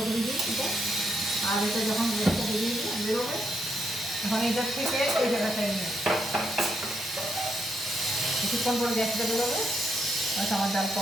করে দিই এটা। আর এটা যখন গ্যাসটা বেরোবে তখন এটার থেকে এই জায়গাটায় নিয়ে কিছুক্ষণ পরে গ্যাসটা বেরোবে, আমার ডাল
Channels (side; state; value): both; normal; correlation 0.79